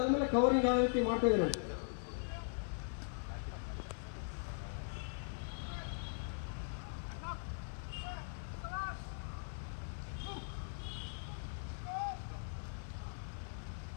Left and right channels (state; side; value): silent; right; 51 dB below the other